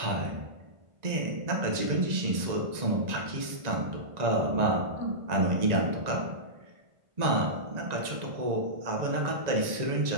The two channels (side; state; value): left; late; 1.9 ms